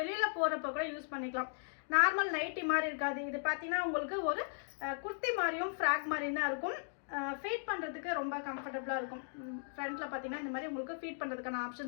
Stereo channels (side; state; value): right; silent; digital silence